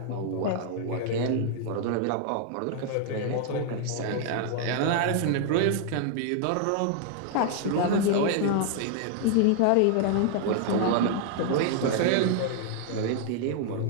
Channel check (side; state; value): both; different; correlation 0.00